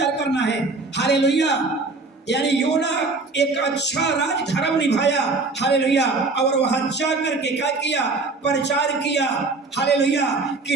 करना है। हालेलुया। यानी योना एक अच्छा राजधर्म निभाया, हालेलुया, और वहां जाकर के क्या किया, प्रचार किया, हालेलुया,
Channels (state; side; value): quieter; left; 3.7 dB